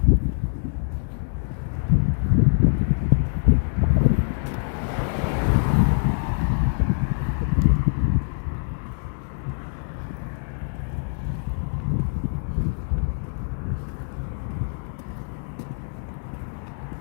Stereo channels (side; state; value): right; silent; digital silence